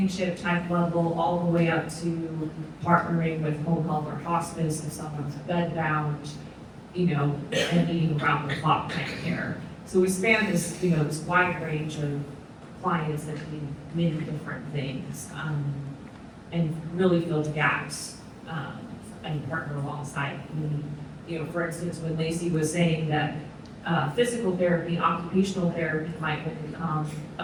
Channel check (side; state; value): both; identical; correlation 1.00